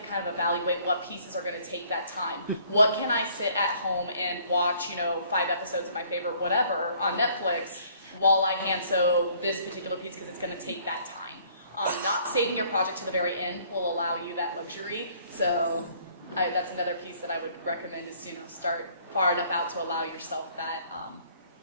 kind of evaluate what pieces are going to take that time. What can I sit at home and watch, 5 episodes of my favorite whatever on Netflix while I hand sew this particular piece because it's going to take that time. Not saving your project to the very end will allow you that luxury. So that's another piece that I would recommend is, start far enough out to allow yourself that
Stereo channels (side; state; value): both; inverted; correlation -0.60